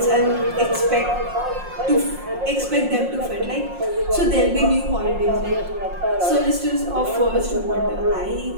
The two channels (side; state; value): left; late; 5.6 ms